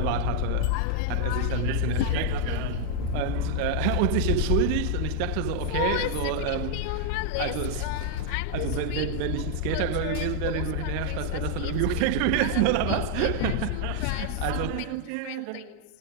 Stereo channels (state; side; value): different; both; correlation 0.00